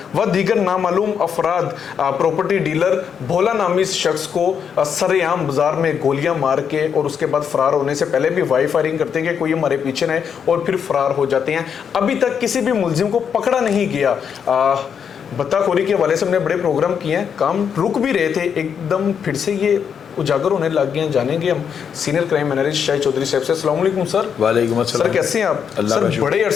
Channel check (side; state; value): right; quieter; 7.4 dB